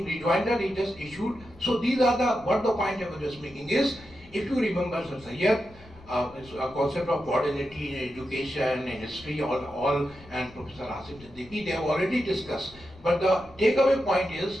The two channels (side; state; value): left; noise; rumble, 22 dB below the sound